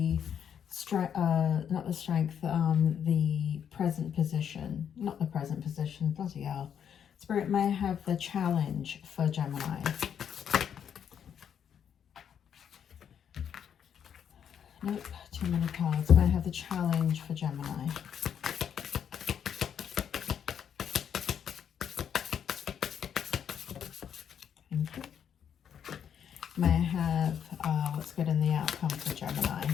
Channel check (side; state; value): right; quieter; 8.4 dB